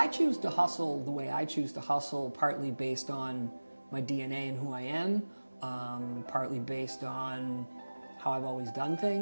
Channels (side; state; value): both; inverted; correlation -1.00